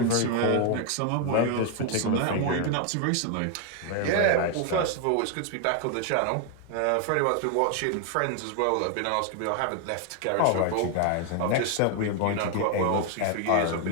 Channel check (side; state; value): both; different; correlation 0.01